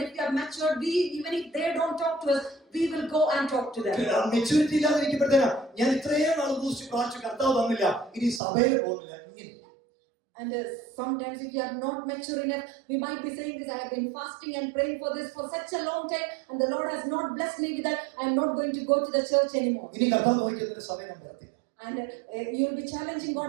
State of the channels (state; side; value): drops out; left; at 8.4 s